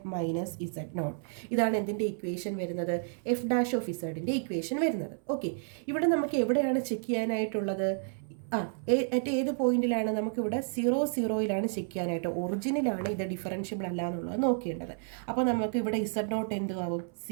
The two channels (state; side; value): silent; left; 57 dB below the other